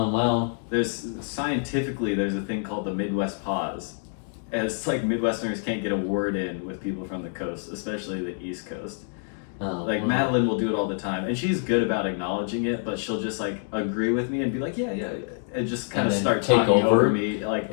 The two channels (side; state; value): right; silent; 61 dB below the other